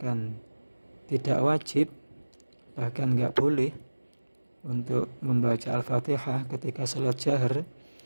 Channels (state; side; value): inverted; both; correlation -1.00